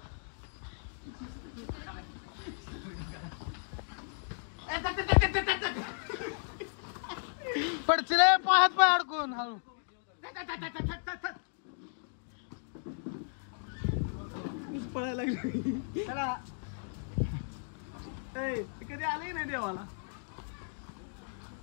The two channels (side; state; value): right; silent; digital silence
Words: पडचिले पायात पाय अडकून हळू पळायला लागली कधी आले नाही देवाला